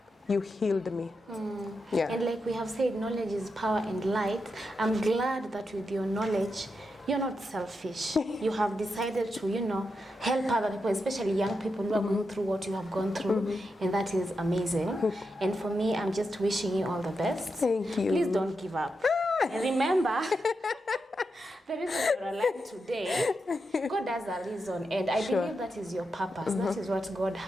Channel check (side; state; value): both; normal; correlation 0.86